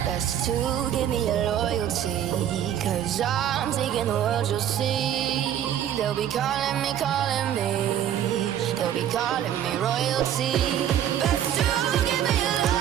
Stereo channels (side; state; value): left; quieter; 10.4 dB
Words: Best to give me your loyalty, 'cause I'm taking the world, you'll see. They'll be calling me, calling me. They'll be calling me royalty. Best to give me your